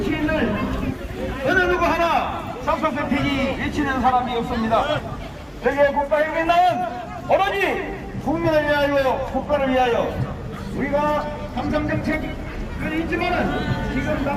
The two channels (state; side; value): identical; both; correlation 1.00